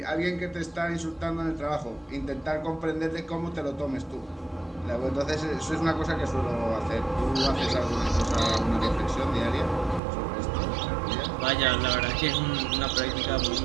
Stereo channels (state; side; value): drops out; left; at 10.0 s